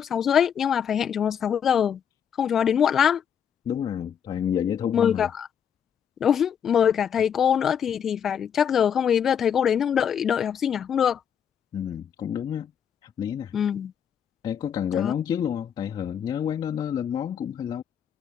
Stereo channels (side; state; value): right; quieter; 8.2 dB